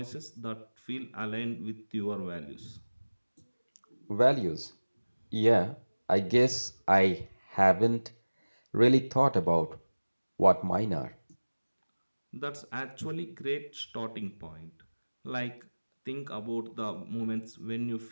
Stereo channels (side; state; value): both; inverted; correlation -1.00